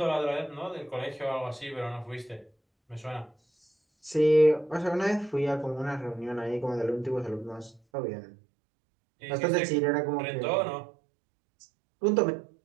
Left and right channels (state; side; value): drops out; left; at 7.8 s